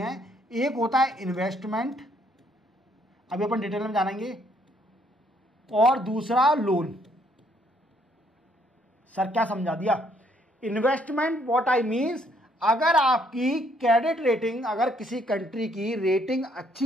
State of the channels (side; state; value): both; normal; correlation 0.68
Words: हैं। एक होता है इन्वेस्टमेंट, अभी अपन डिटेल में जानेंगे, और दूसरा लोन। सर क्या समझा दिया? इन्वेस्टमेंट व्हाट आई मीन्स, अगर आपकी क्रेडिट रेटिंग, अगर किसी कंट्री की रेटिंग